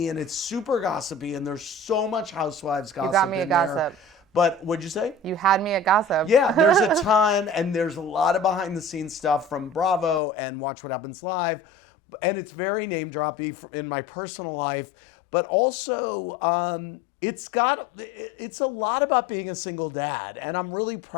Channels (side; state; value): right; drops out; at 10.2 s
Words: and it's super gossipy, and there's so much Housewives gossip in there. You got me a gossip. But what'd you say? You had me at gossip. Yeah, there's a ton, and there's a lot of behind-the-scenes stuff from Bravo and Watch What Happens Live. And it's very name-droppy in my personal life, but also it's a lot about being a single dad, and I'm really